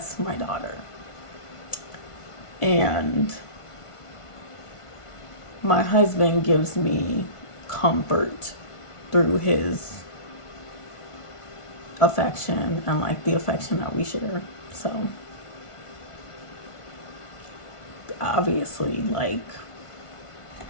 my daughter. And my husband gives me comfort through his affection and like the affection that we share. So obviously, like,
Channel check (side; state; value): right; late; 1.5 ms